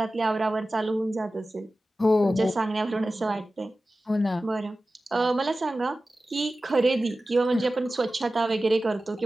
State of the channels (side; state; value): both; normal; correlation 0.95